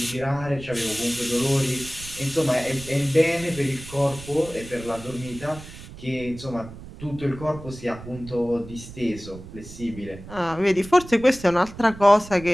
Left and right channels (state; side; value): noise; right; rumble, 15 dB below the sound